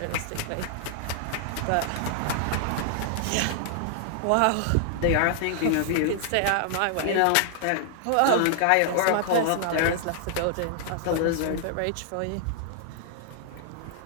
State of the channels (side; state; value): both; different; correlation -0.01